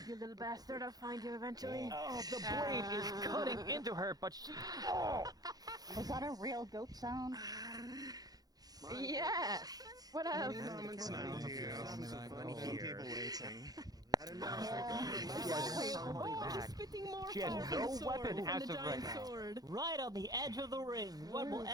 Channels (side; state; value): left; late; 0.19 ms